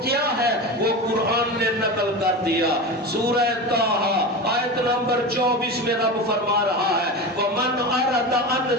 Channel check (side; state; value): both; normal; correlation 0.26